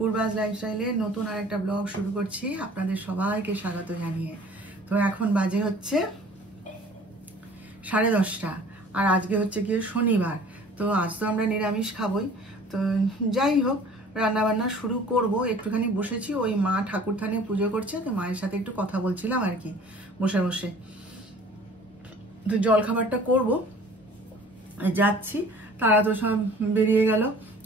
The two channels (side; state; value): both; normal; correlation 0.49